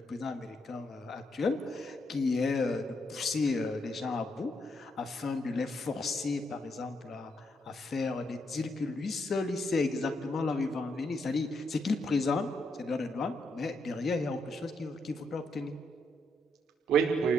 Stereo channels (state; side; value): normal; both; correlation 0.78